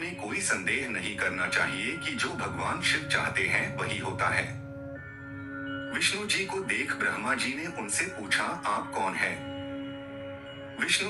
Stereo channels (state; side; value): identical; both; correlation 1.00